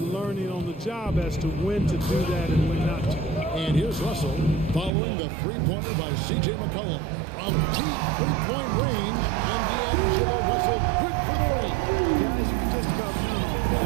on the job as to when to do that and when not to. And here's Russell following the three-pointer by C.J. McCollum. From deep three-point range, and D'Angelo Russell good for 3. Guys, you can just about count on him. If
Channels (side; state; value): left; drops out; at 4.9 s